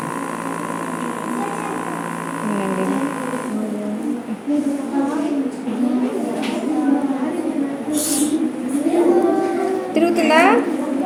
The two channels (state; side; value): identical; both; correlation 1.00